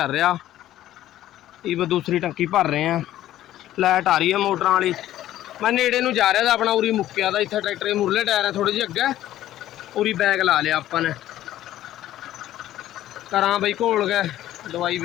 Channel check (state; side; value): quieter; right; 13.3 dB